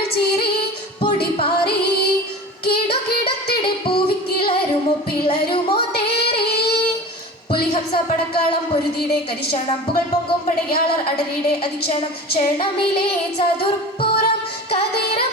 ചീറി പൊടി പാറി കിടുകിടത്തിടെ പൂവിക്കിളരുമോ പിളരുമോ തേറി പുലിഹംസ പടക്കാളം പൊരുതിയുടെ കരിശണം പുകൾ പൊങ്കും പടയാളർ അടരിയുടെ അധിക്ഷണം ക്ഷണമിലെ ചതുർപ്പുറം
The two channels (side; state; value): both; normal; correlation 0.35